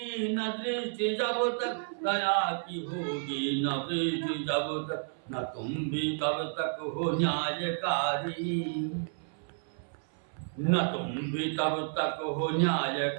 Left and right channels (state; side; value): silent; left; 57 dB below the other